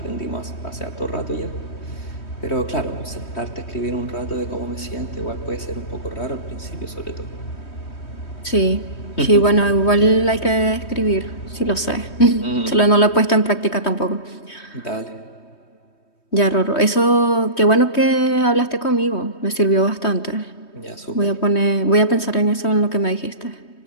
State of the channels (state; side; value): late; right; 3.2 ms